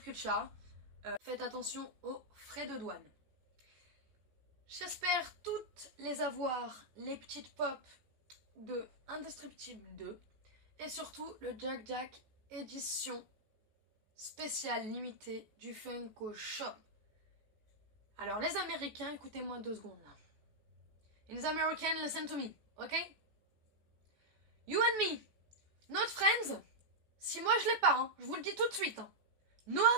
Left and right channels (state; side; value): late; left; 14 ms